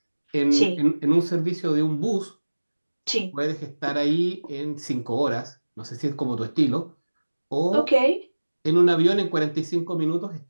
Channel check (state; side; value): inverted; both; correlation -1.00